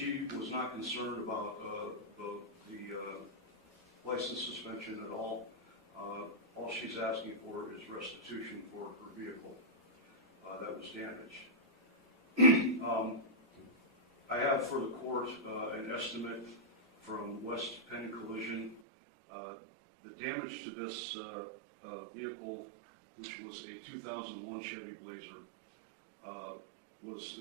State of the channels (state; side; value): drops out; left; at 18.8 s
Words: was not concerned about the license suspension at all. All she's asking for is restitution for her vehicle that was damaged. I have for the court an estimate from West Penn Collision. The damage to this vehicle, which was a 2001 Chevy Blazer, was